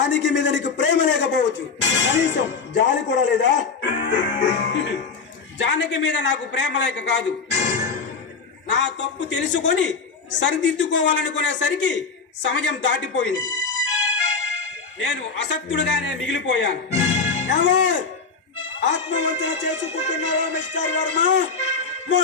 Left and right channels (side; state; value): right; quieter; 4.8 dB